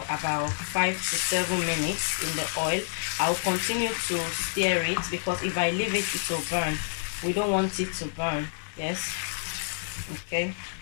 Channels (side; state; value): right; silent; digital silence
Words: about 5 to 7 minutes in the oil. I'll continue to stir it because if I leave it, it will burn. We don't want it to burn. Yes. Okay.